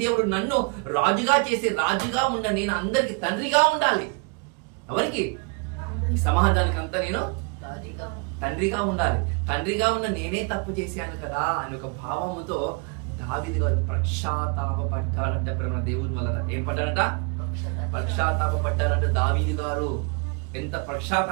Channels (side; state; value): left; quieter; 34.8 dB